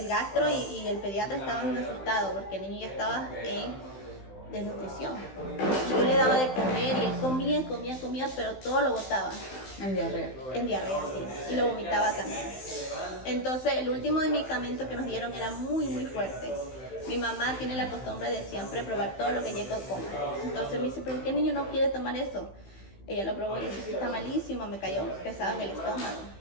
gastro y el pediatra estaban asustados porque el niño ya estaba en desnutrición. Yo le daba de comer y él comía, pero todo lo botaba. En diarrea. En diarrea, sí. Y lo vomitaba también. Entonces el último medicamento que nos dieron era muy fuerte. Mi mamá tiene la costumbre de siempre probar todo lo que Jacob come. Entonces me dice, ¿pero qué niño no quiere tomar eso? Ella lo probó y dice, "Sí, está malísimo, me cayó pesado en el estómago".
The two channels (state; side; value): late; right; 15 ms